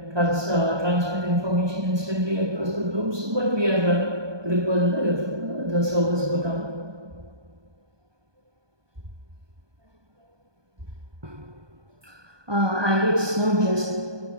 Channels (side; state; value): left; late; 1.2 ms